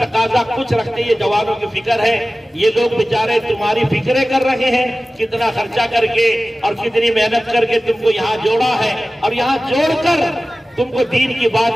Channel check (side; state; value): both; normal; correlation 0.96